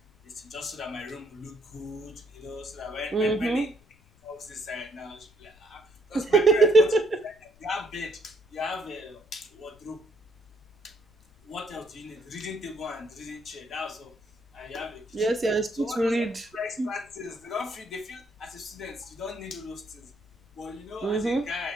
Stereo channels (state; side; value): noise; left; rumble, 28 dB below the sound